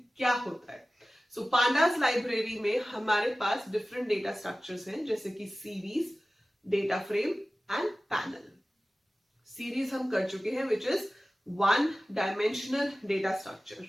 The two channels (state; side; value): normal; both; correlation 0.96